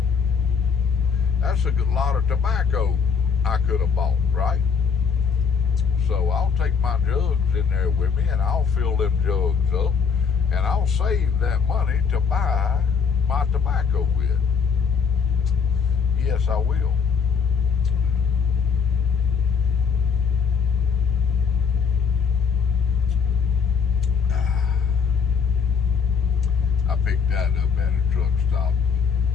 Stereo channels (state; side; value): quieter; right; 6.0 dB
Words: That's a good lot of tobacco I could have bought, right? So I'll take my jugs in there with me, and I'll fill them jugs up, and I'll save that money to buy my tobacco with. Yes, I will. I picked that up at a truck stop